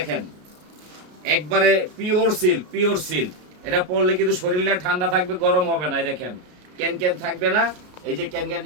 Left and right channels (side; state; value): left; late; 33 ms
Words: একবারে পিওর সিল্ক, পিওর সিল্ক। এটা পরলে কিন্তু শরীরটা ঠান্ডা থাকবে, গরম হবে না। এই দেখেন ক্যান থাকবে না। এই যে ক্যান